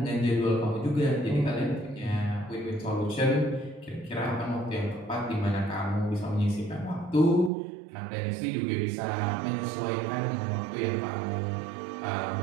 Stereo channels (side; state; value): left; drops out; at 7.5 s